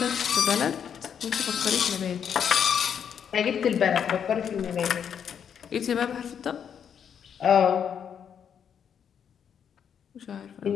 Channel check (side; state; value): right; quieter; 8.0 dB